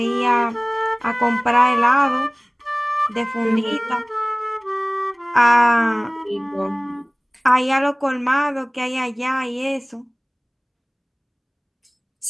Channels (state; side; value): identical; both; correlation 1.00